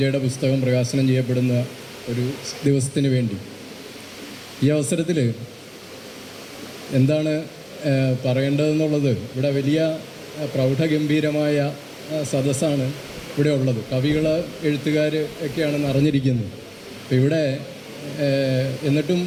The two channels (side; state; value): both; identical; correlation 1.00